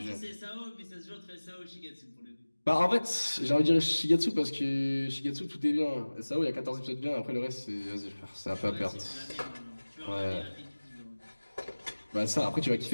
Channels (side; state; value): both; inverted; correlation -1.00